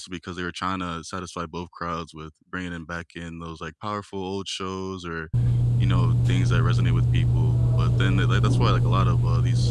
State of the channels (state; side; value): identical; both; correlation 1.00